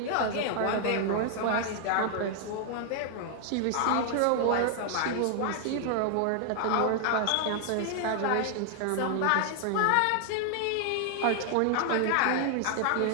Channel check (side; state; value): both; different; correlation 0.00